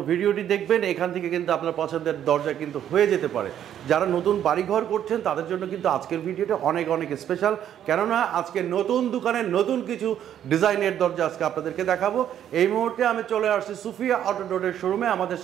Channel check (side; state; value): left; quieter; 10.3 dB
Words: ভিডিওটি দেখবেন। এখান থেকে কিন্তু আপনার পছন্দের দরজা কিন্তু হয়ে যেতে পারে। যারা নতুন বাড়িঘর করছেন তাদের জন্য কিন্তু আজকের ভিডিওটা অনেক অনেক স্পেশাল, কেননা আজকে নতুন দোকানের নতুন কিছু ডিজাইনের দরজা আজকে আপনাদেরকে দেখাবো। এই মুহূর্তে আমি চলে আসছি সুফিয়া অটো ডোরের শোরুমে। আমাদের